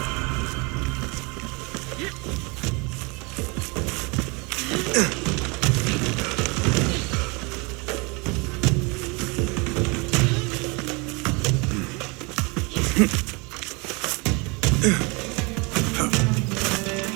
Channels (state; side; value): quieter; left; 28.8 dB